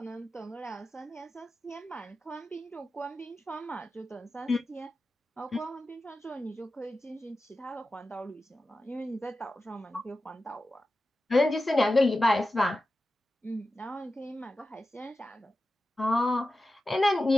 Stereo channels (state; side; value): normal; both; correlation 0.93